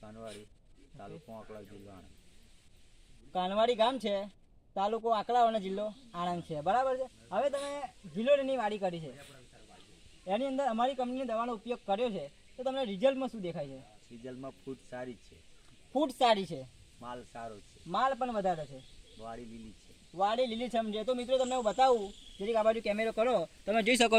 કાનવાડી, તાલુકો આંકલાવ, જિલ્લો આણંદ। કાનવાડી ગામ છે, તાલુકો આંકલાવ અને જિલ્લો આણંદ છે, બરાબર છે। હવે તમે ગિલોરીની વાડી કરી છે, એની અંદર અમારી કંપનીની દવાનો ઉપયોગ કર્યો છે, તો તમને રિઝલ્ટમાં શું દેખાય છે? રિઝલ્ટમાં ફૂટ સારી છે, ફૂટ સારી છે, માલ સારો છે, માલ પણ વધારે છે, વાડી લીલી છે, વાડી લીલીછમ છે। તો મિત્રો તમને હું બતાવું, જરીક આ બાજુ કેમેરો કરો, તમે જોઈ શકો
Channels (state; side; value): identical; both; correlation 1.00